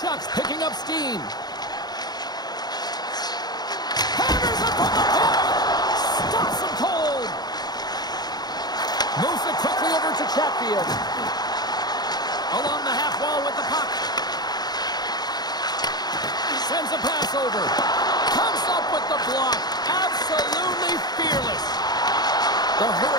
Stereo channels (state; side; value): late; right; 0.20 ms